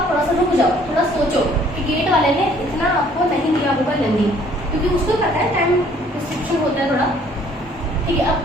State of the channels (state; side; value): normal; both; correlation 0.59